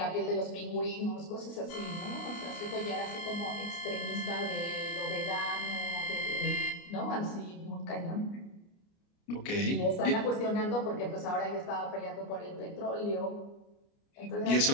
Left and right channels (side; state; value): right; late; 29 ms